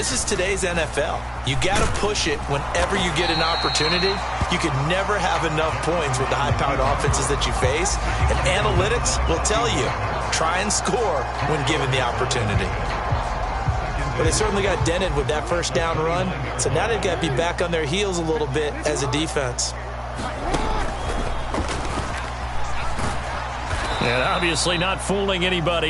is today's NFL. You got to push it whenever you get an opportunity. You can never have enough points with the high-powered offenses that you face. And analytics will tell you, try and score when given the opportunity. But they certainly got dented with that first down run. So now they've got to be back on their heels a little bit as a defense. And obviously not fooling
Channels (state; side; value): identical; both; correlation 1.00